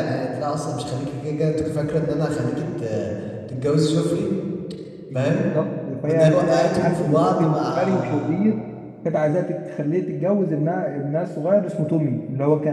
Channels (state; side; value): identical; both; correlation 1.00